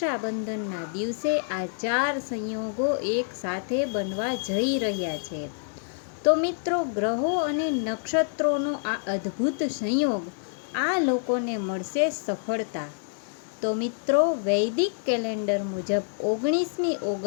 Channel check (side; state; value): right; silent; digital silence